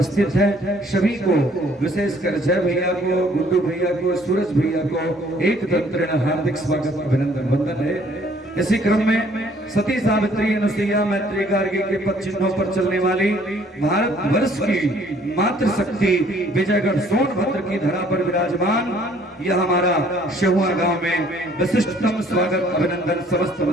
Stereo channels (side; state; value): both; normal; correlation 0.60